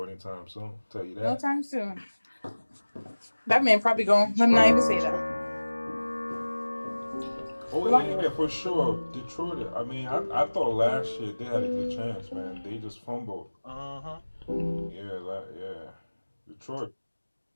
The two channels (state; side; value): inverted; both; correlation -1.00